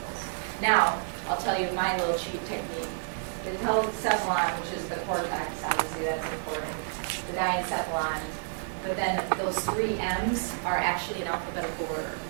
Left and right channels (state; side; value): silent; left; digital silence